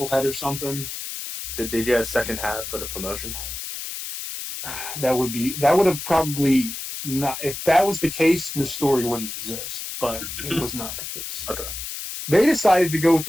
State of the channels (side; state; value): left; noise; hiss, 7 dB below the sound